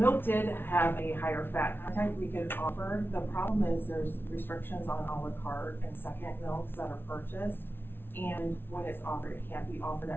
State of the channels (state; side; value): late; right; 0.11 ms